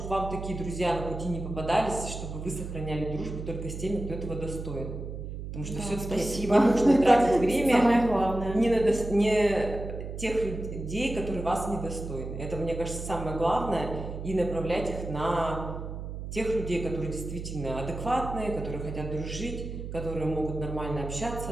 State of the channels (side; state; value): right; noise; hum, 7 dB below the sound